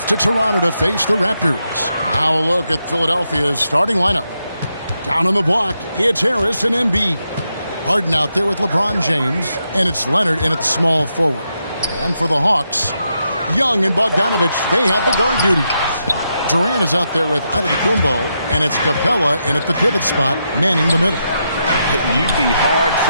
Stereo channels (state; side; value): inverted; both; correlation -0.83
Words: to Toronto to face the Raptors. Now a look at Philadelphia's starting lineup. Down on the block, it's Harris and Embiid. Harden out there with LeBron James, and it's Leonard in at the small forward. And for the Hawks, Young and Bogdanovich, they have the guard duties. Durant is out there with Antetokounmpo, and it's Capella in at the pivot spot, manning the middle. You'd be